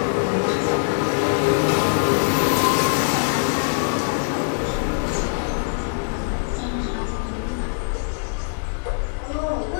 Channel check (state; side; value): silent; right; digital silence